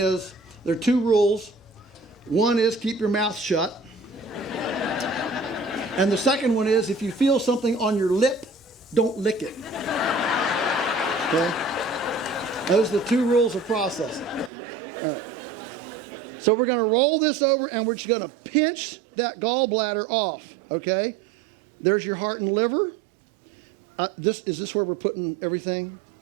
there are 2 rules. One is keep your mouth shut. And the second one is if you feel something on your lip, don't lick it. Okay? Those are the 2 rules of processing. So we're going to roll this over and we're just going to pinch that gallbladder off. Okay? There's your heart and liver. Is this where we're putting everything?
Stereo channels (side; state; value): left; drops out; at 14.5 s